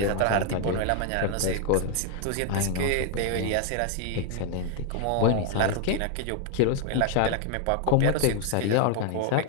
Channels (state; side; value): different; both; correlation 0.00